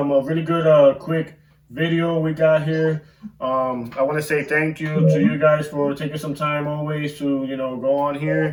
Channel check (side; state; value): both; identical; correlation 1.00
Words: really good quick video we got here. I want to say thank you to you guys for taking some time always to go on